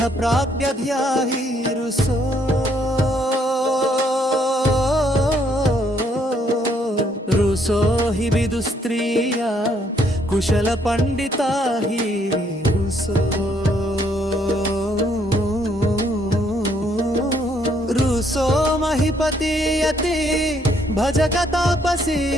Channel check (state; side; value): normal; both; correlation 0.69